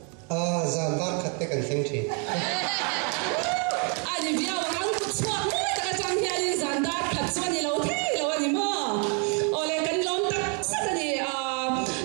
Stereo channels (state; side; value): quieter; left; 37.3 dB